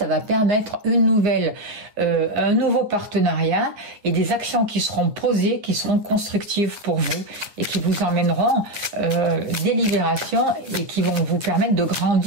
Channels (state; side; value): late; left; 9.5 ms